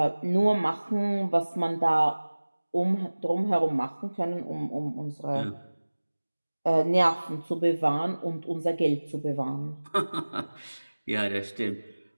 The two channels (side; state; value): both; inverted; correlation -1.00